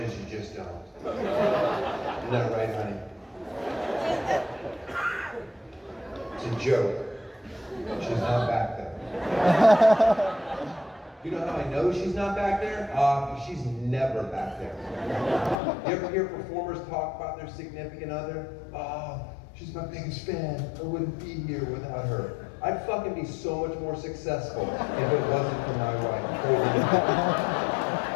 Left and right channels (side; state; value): right; drops out; at 15.6 s